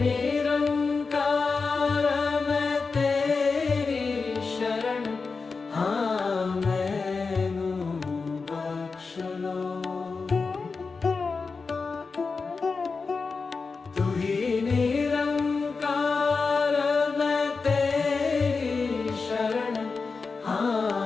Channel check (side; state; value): right; quieter; 4.5 dB